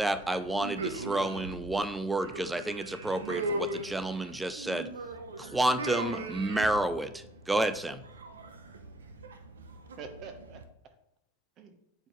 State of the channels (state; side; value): normal; both; correlation 0.69